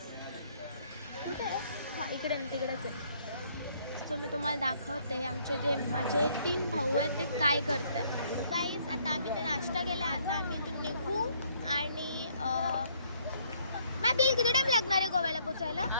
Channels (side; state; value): both; inverted; correlation -0.66